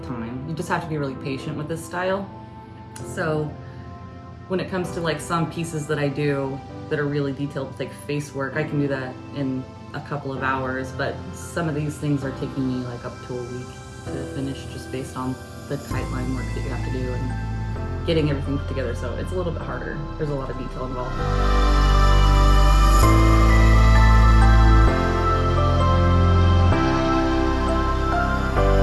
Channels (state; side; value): identical; both; correlation 1.00